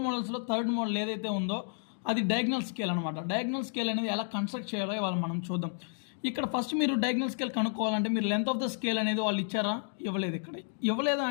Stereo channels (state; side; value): silent; right; digital silence